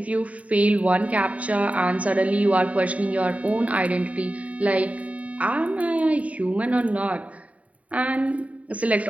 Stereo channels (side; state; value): left; late; 0.068 ms